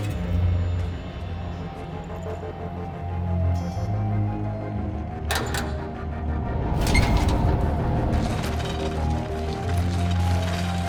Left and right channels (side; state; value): both; identical; correlation 1.00